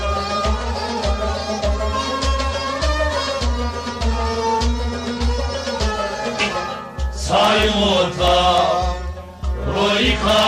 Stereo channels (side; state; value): both; identical; correlation 1.00